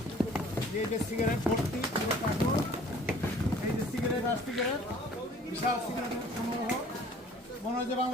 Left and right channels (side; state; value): both; normal; correlation 0.52